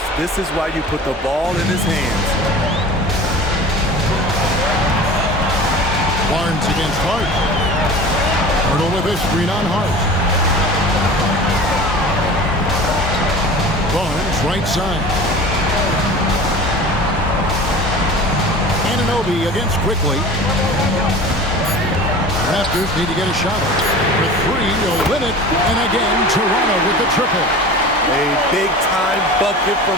This is why you put the ball in his hands. Barnes against Hart. Pirtle with a screen on Hart. Barnes right side. Anunoby against Quickly. Raptors need to get a shot. For 3, Olynyk, and again Toronto with the triple. A big-time bucket from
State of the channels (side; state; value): both; normal; correlation 0.38